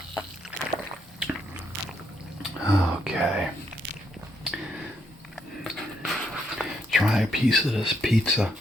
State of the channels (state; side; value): normal; both; correlation 0.76